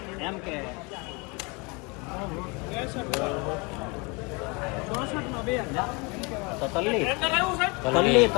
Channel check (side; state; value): right; quieter; 29.0 dB